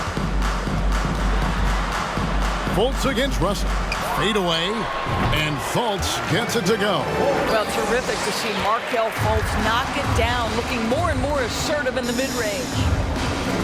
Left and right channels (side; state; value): both; identical; correlation 1.00